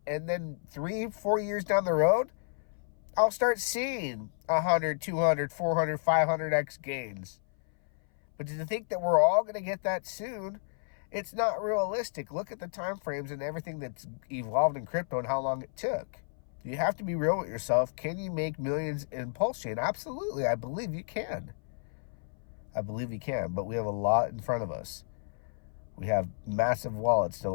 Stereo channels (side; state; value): right; silent; 57 dB below the other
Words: then 3-4 years down the road, I'll start seeing 100, 200, 400, 500x gains. But to think that we're all going to get that soon, it's not realistic. Look at the time frames and everything that's evolved in crypto and how long it took. You have to be real with yourself. Can you make millions in Pulsechain? Absolutely. I believe you can. I believe you can, but we have a lot in front of us. We have massive wallets to